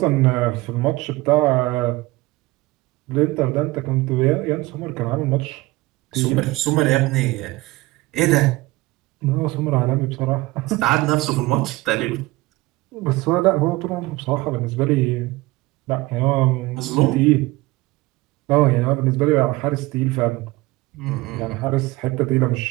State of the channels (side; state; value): left; quieter; 20.5 dB